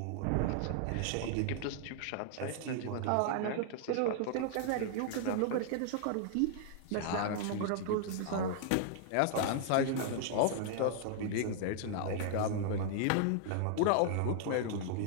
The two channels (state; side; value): different; both; correlation 0.00